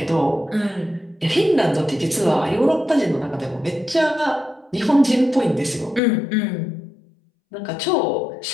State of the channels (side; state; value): right; drops out; at 6.0 s